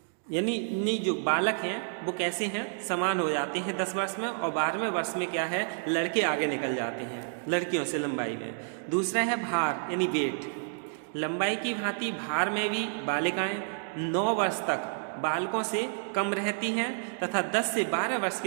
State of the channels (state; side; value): silent; left; digital silence